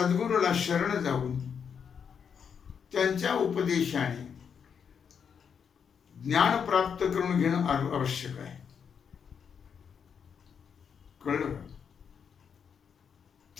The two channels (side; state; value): right; quieter; 7.0 dB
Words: शरण जाऊन त्यांच्या उपदेशाने ज्ञान प्राप्त करून घेणं आवश्यक आहे. कळलं का?